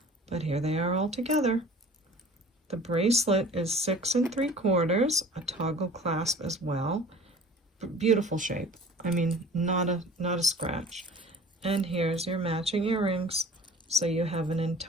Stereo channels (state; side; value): normal; both; correlation 0.45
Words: but here they are all together. The bracelet is 6 3/4, a toggle clasp as well. Beautiful shape. I mean, not a scratch. And here's your matching earrings. So you have an